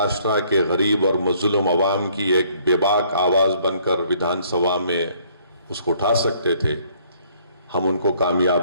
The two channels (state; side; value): inverted; both; correlation -0.62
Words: کے غریب اور مظلوم عوام کی ایک بے باک آواز بن کر ودھان سبھا میں اس کو اٹھا سکتے تھے، ہم ان کو